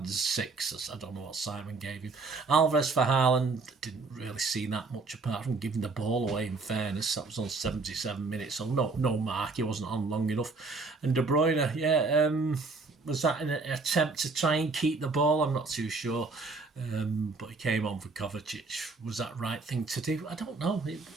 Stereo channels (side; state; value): left; quieter; 4.0 dB